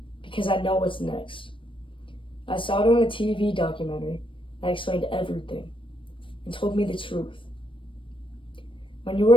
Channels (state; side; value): late; right; 0.25 ms